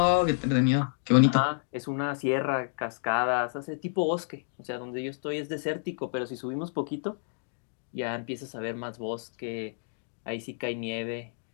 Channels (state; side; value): silent; right; digital silence